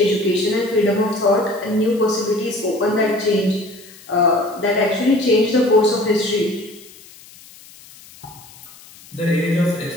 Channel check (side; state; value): left; noise; hiss, 22 dB below the sound